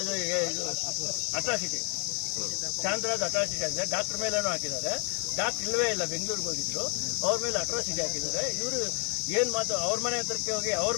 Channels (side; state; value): right; quieter; 38.9 dB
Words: ಅಟ್ರಾಸಿಟಿ. ಶಾಂತರಾಜ್ ಅಟ್ರಾಸಿಟಿ ಆಗಿದೆ. ಡಾಕ್ಟರ್ ಮೇಲೇನೂ ಹಾಕಿದ್ದಾರೆ. ಡಾಕ್ಟರ್ ಇಲ್ಲವೇ ಇಲ್ಲ, ಬೆಂಗಳೂರಿಗೆ ಹೋಗಿದ್ರು. ಅವ್ರ ಮೇಲೆ ಅಟ್ರಾಸಿಟಿ ಹಾಕಿದ್ದಾರೆ. ಇವರು ಏನ್ ಮಾತು ಅವ್ರ ಮನೆ ಹತ್ರಕ್ಕೆ ಹೋಗಿ ಅವ್ರ